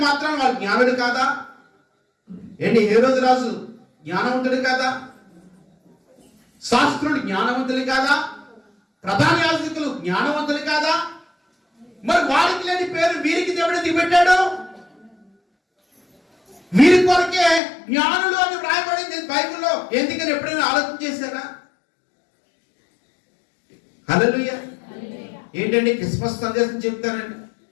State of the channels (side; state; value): right; drops out; at 17.6 s